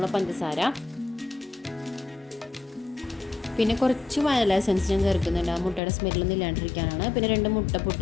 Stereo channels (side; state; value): right; drops out; at 5.8 s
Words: പഞ്ചസാര, പിന്നെ കുറച്ച് വാനില എസൻസ് ഞാൻ ചേർക്കുന്നുണ്ട്, ആ മുട്ടയുടെ സ്മെല്ലൊന്നും ഇല്ലാണ്ടിരിക്കാനാണ്. പിന്നെ 2 മുട്ട